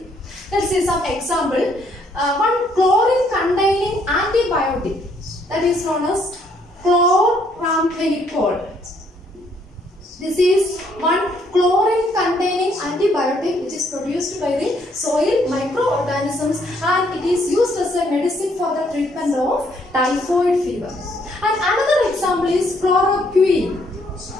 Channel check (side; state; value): both; normal; correlation 0.68